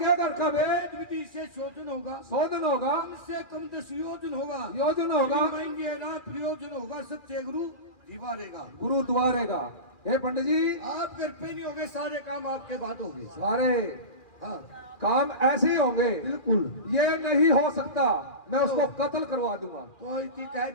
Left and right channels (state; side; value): late; right; 2.4 ms